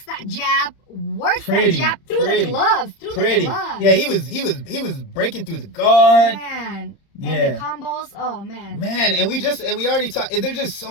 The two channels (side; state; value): right; late; 30 ms